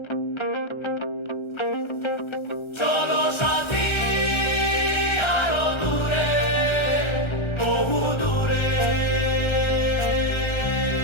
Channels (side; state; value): right; late; 1.3 ms